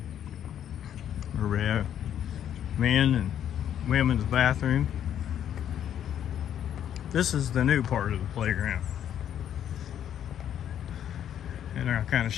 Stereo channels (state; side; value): quieter; right; 9.9 dB